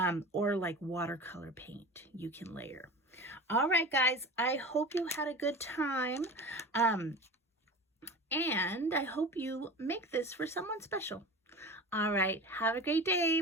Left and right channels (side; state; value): both; normal; correlation 0.33